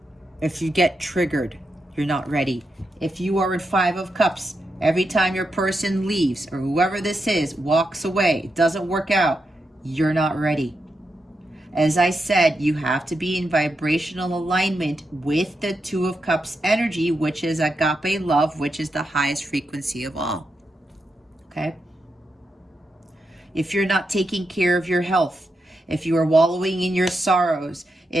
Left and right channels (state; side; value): normal; both; correlation 0.85